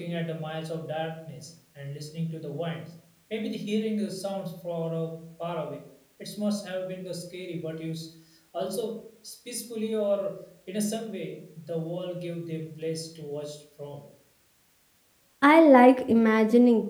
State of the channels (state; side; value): identical; both; correlation 1.00